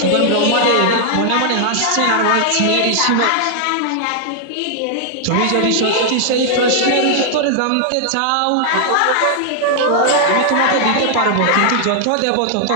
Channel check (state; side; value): different; both; correlation 0.00